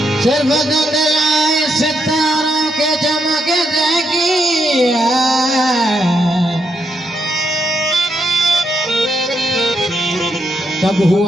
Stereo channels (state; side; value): normal; both; correlation 0.79